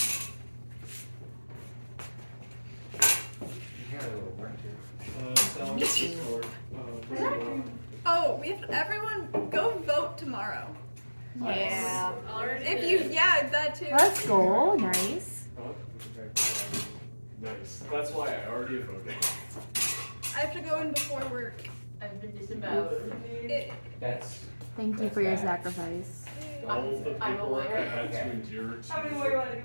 You got a little work here. Sal, what's the score? Oh, we have everyone go vote tomorrow. Yeah. If you, yeah, that too. Let's go. Nice. Nice. That's why I already voted. I have to go in before work. I've been disemboweled. That's. Thank you That's for your bad. sacrifice. All the I'm paperwork I aware. had to Okay. endure How many to more you want to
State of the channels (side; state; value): both; inverted; correlation -1.00